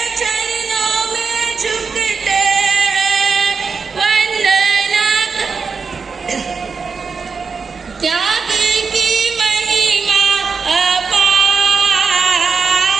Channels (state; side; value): quieter; left; 5.2 dB